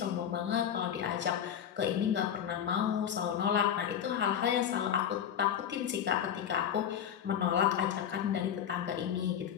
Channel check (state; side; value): quieter; right; 9.0 dB